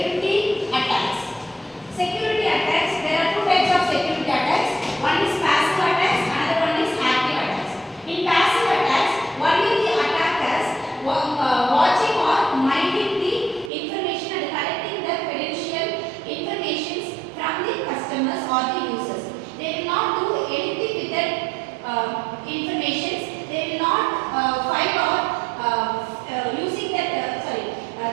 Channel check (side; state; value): left; drops out; at 13.7 s